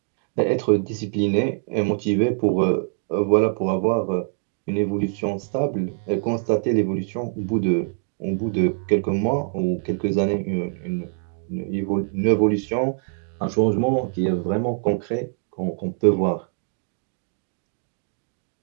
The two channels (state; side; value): silent; left; 63 dB below the other